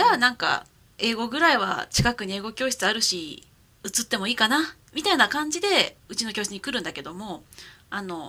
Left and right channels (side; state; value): both; identical; correlation 1.00